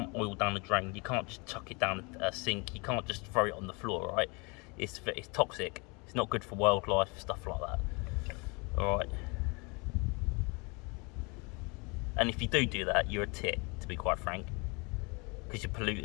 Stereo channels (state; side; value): quieter; right; 29.7 dB